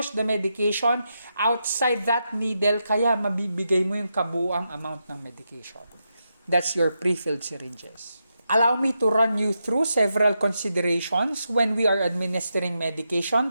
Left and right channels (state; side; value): inverted; both; correlation -0.85